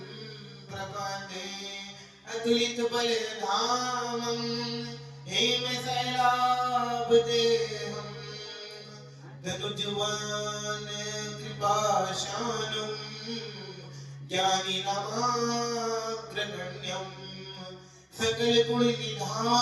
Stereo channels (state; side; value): identical; both; correlation 1.00